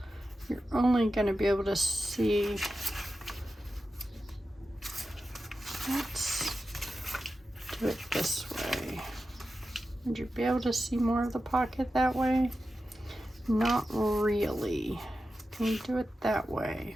you're only gonna be able to see, let's do it this way. Would you be able to see more of the pocket that way? Not really. Can we do it that way?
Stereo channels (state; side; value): normal; both; correlation 0.92